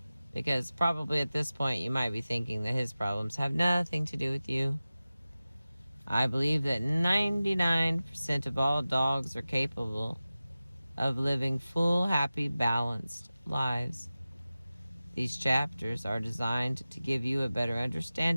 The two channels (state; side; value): inverted; both; correlation -0.96